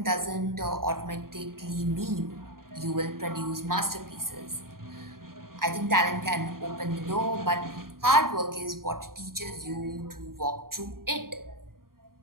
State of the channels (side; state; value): left; late; 0.92 ms